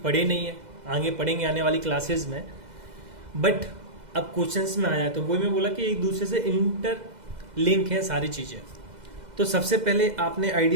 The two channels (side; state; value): left; late; 2.0 ms